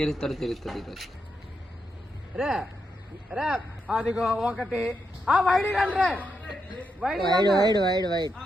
తెలుస్తుంది ఈరోజు. రే రే అదిగో ఒకటి వైడ్ రండి wide wide wide wide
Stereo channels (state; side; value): normal; both; correlation 0.84